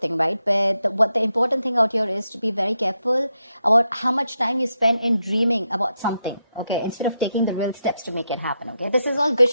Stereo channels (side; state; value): both; inverted; correlation -0.84